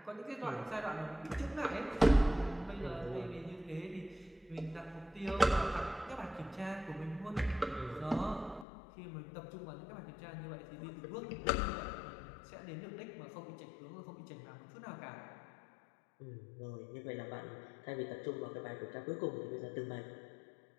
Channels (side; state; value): right; drops out; at 8.7 s